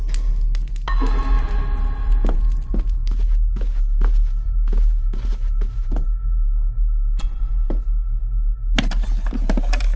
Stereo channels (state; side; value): identical; both; correlation 1.00